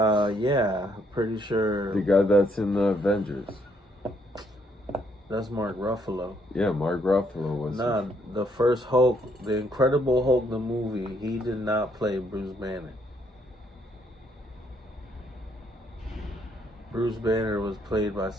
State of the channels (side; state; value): both; normal; correlation 0.71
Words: pretty sure. The guy that's in the Avengers. That's Mark Ruffalo. Yeah, Mark Ruffalo was. Nah, the first Hulk, the Incredible Hulk, the movie, he did not play Bruce Banner. Bruce Banner was played by